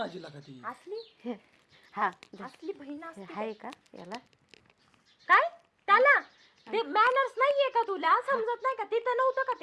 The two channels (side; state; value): both; identical; correlation 1.00